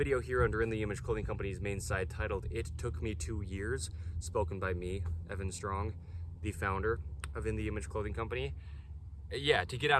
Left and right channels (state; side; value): identical; both; correlation 1.00